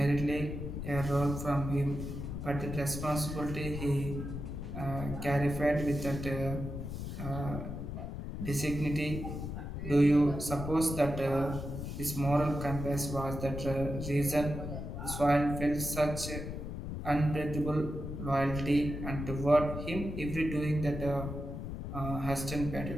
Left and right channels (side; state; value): left; noise; rumble, 6 dB below the sound